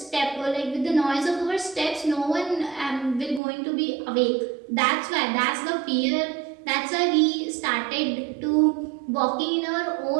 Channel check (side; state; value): left; drops out; at 3.4 s